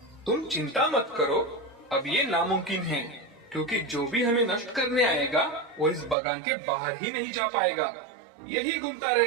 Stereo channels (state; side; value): drops out; left; at 6.2 s